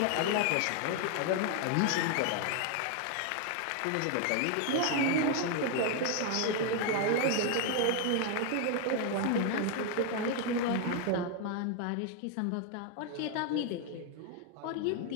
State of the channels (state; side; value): different; both; correlation 0.01